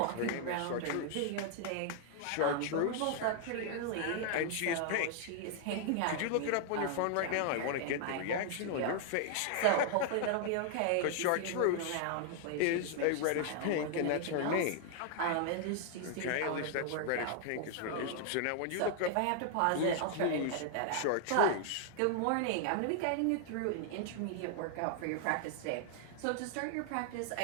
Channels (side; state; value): both; different; correlation 0.00